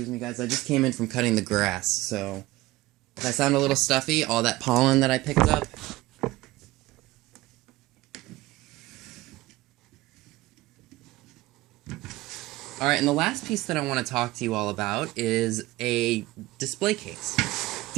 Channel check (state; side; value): quieter; left; 18.6 dB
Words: me, guys, I just came in from cutting the grass, so if I sound a little stuffy, all that pollen that I picked up. Alright, and the last piece that I want to talk to you all about is a display case. A